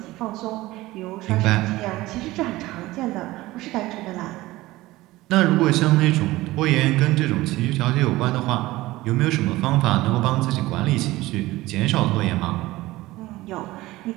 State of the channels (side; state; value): left; quieter; 18.3 dB